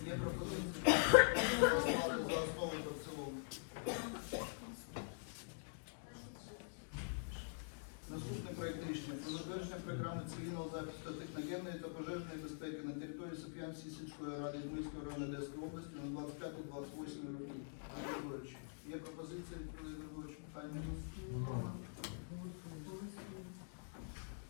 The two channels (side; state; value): right; silent; digital silence